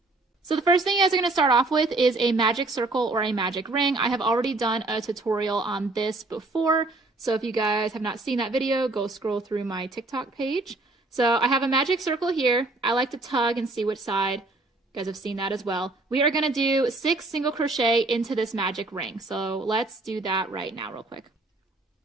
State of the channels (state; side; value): quieter; left; 3.1 dB